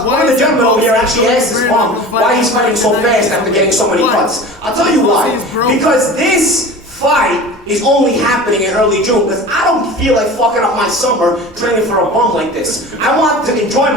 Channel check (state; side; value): normal; both; correlation 0.36